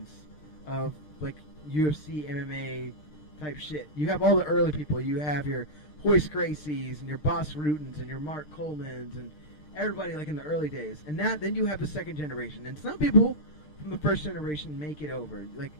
of, like, UFC, MMA type shit. You have all the early people. You have your Hoist Gracies and your Boss Rutens and your Mark Colemans and everybody, like, in the early days. And then you have the second generation. And some people from the first generation make it over. Like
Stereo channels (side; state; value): right; late; 6.6 ms